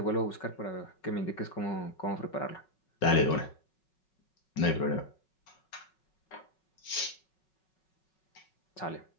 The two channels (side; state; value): right; late; 5.4 ms